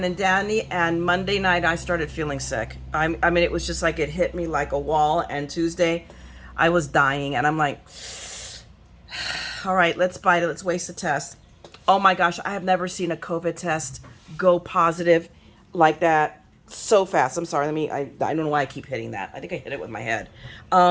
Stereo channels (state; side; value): identical; both; correlation 1.00